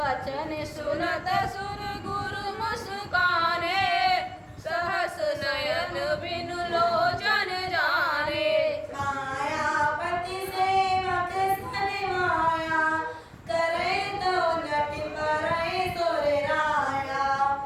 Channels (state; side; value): identical; both; correlation 1.00